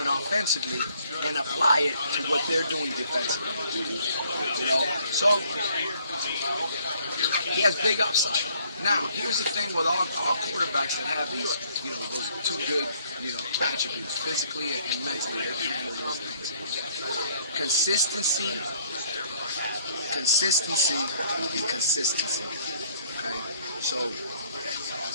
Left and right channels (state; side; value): inverted; both; correlation -0.62